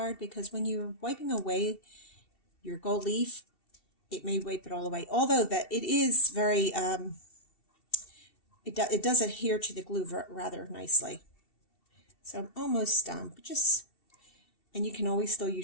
because when you're wiping away your gold leaf, it may wipe it all away. Although that it is very, it does adhere to the glue rather nicely. So I'm almost done, but and you can always still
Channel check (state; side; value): late; right; 2.7 ms